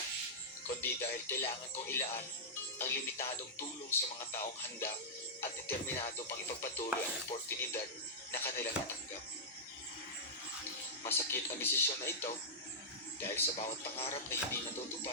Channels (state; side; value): normal; both; correlation -0.11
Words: kundi dahil kailangan kong ilaan ang limitadong tulong sa mga taong handa at determinado pang ipagpatuloy ang oportunidad na kanilang natanggap. Masakit ang desisyon na ito dahil sa bawat pangarap na hindi